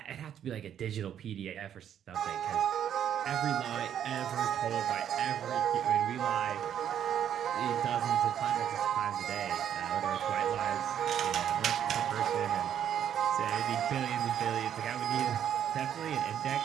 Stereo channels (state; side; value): quieter; left; 9.6 dB